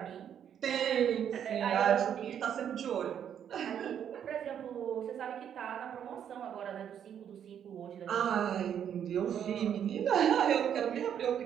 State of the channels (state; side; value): quieter; left; 9.0 dB